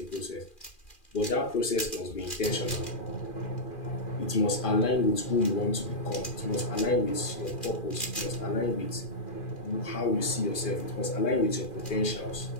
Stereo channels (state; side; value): late; right; 2.4 ms